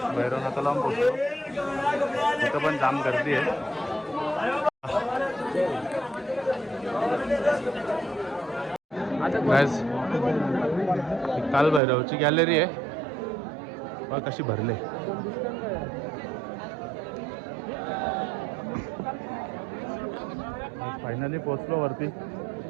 भैरवनाथाला पण पोचलो. तिथं पण जाम गर्दी आहे. काल भैरवची गॅलरी आहे बघ कशी भरले. फायनली पोचलो वरती.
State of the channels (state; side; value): drops out; left; at 11.8 s